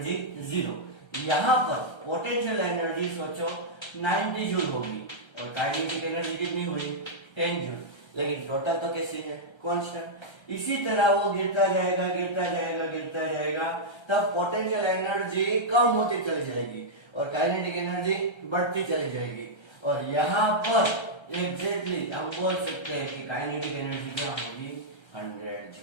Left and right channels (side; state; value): right; late; 1.3 ms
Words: 0। यहाँ पर पोटेंशियल एनर्जी सोचो 90 जूल होगी और काइनेटिक एनर्जी कितनी हुई, 10 जूल, लेकिन टोटल तो कैसी है, कांस्टेंट। इसी तरह वो गिरता जाएगा गिरता जाएगा गिरता जाएगा, तब पोटेंशियल एनर्जी कम होती चली जाएगी और काइनेटिक एनर्जी बढ़ती चली जाएगी। और यहाँ पर एग्जैक्टली हम बोल सकते हैं कि काइनेटिक एनर्जी क्या होगी 100